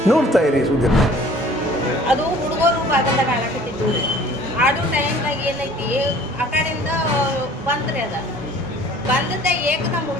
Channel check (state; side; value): normal; both; correlation 0.51